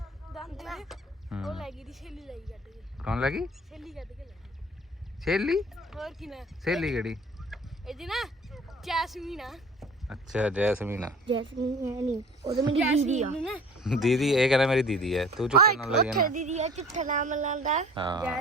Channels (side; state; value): both; normal; correlation 0.45